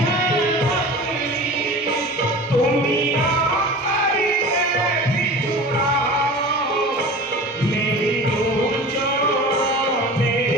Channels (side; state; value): both; normal; correlation 0.36